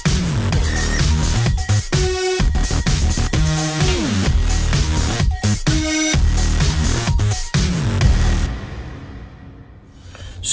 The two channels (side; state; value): both; identical; correlation 1.00